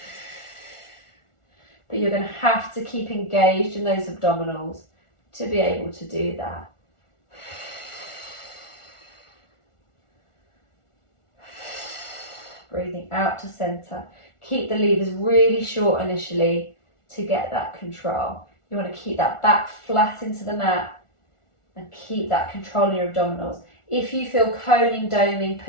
But you're going to have to keep engaged in those abdominals to be able to do that. Breathing out to center. Keep the levers really short initially to get that control. You want to keep that back flat into the mat and keep that control in your abdominals. If you feel coning, doming,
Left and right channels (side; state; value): right; late; 1.4 ms